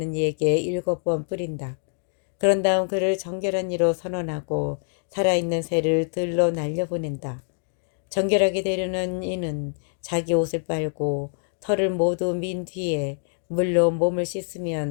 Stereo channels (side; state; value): right; silent; digital silence